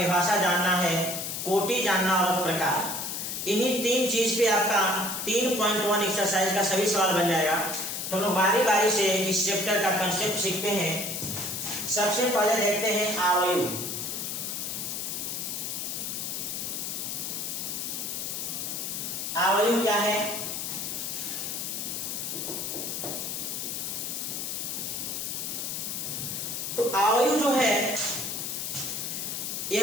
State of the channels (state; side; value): noise; left; hiss, 4 dB below the sound